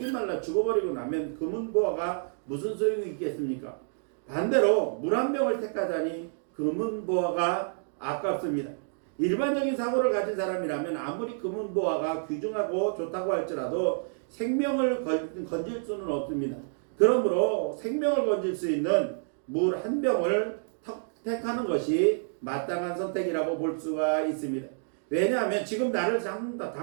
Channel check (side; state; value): left; silent; digital silence